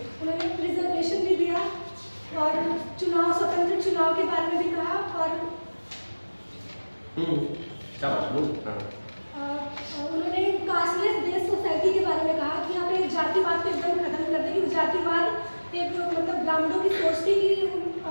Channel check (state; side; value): inverted; both; correlation -1.00